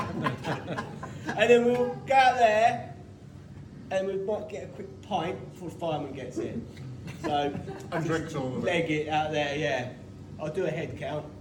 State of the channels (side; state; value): both; identical; correlation 1.00